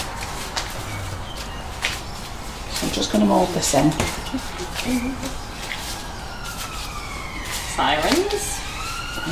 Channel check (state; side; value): identical; both; correlation 1.00